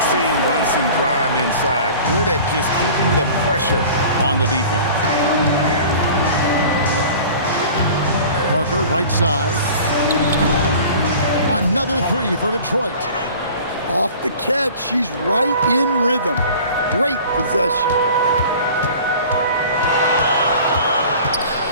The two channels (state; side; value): inverted; both; correlation -0.43